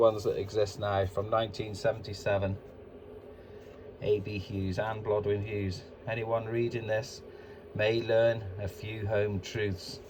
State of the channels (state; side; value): identical; both; correlation 1.00